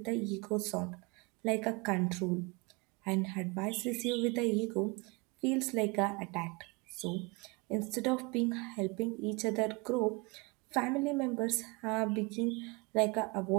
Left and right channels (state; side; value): quieter; left; 27.4 dB